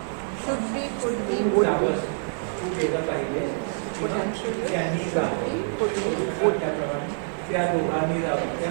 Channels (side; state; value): left; silent; digital silence